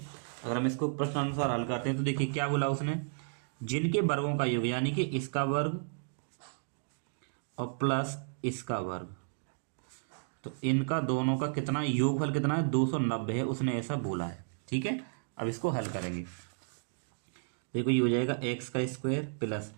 अगर हम इसको प्रश्नानुसार हल करते हैं तो देखिए क्या बोला उसने, जिनके वर्गों का योग यानी कि इसका वर्ग और प्लस इसका वर्ग, तो इनका दोनों का कितना योगफल कितना है 290 है, उसने ऐसा बोला है, ठीक है। अब इसको हल करेंगे, देखो ये हो जाएगा एक्स का स्क्वायर प्लस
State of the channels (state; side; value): silent; left; digital silence